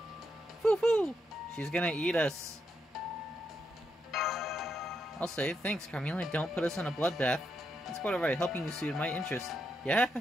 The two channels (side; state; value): both; normal; correlation 0.81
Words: Foo-foo! She's gonna eat us. I'll say, thanks, Carmilla. Don't put us in a bloodbath. That's quite alright. Helping you suited my interest. Yeah.